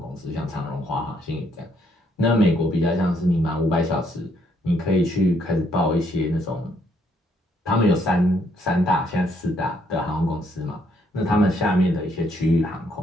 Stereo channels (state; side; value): normal; both; correlation 0.71